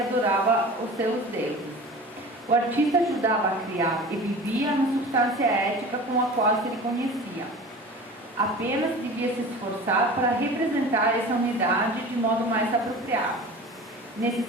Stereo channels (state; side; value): normal; both; correlation 0.37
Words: os seus deuses. O artista ajudava a criar e vivia na substância ética com a qual se reconhecia. Apenas devia se esforçar para representar essa unidade de modo mais apropriado. Nesse